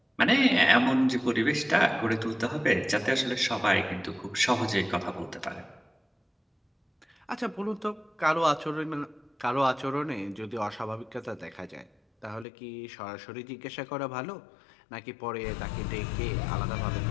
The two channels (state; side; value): drops out; right; at 12.5 s